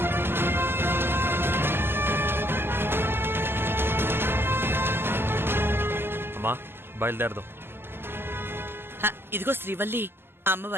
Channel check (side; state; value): left; late; 0.11 ms